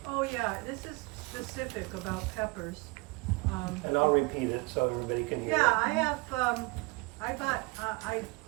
Oh yeah, this is specific about peppers. And I'll repeat it so everybody can hear Yeah, it. I have, I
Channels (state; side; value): quieter; left; 26.1 dB